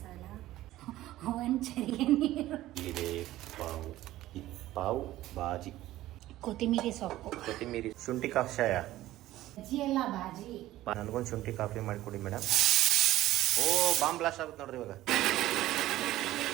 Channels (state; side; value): quieter; left; 15.4 dB